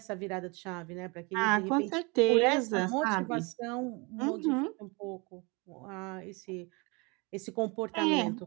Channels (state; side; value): quieter; left; 28.7 dB